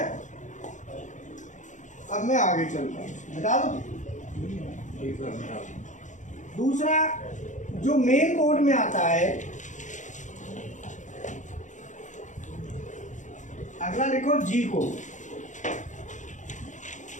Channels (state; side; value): late; right; 0.36 ms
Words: अब मैं आगे चलता हूँ, बता दो। दूसरा जो मेन कोड में आता है, अगला लिखो G code.